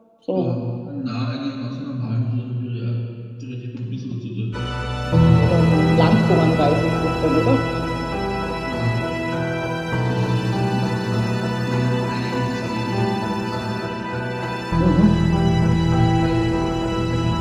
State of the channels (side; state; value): both; identical; correlation 1.00